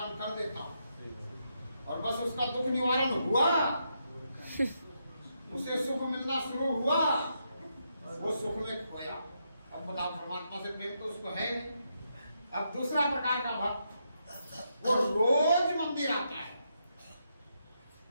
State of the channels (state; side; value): inverted; both; correlation -0.81